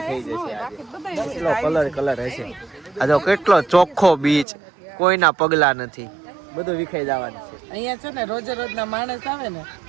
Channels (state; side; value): drops out; left; at 4.5 s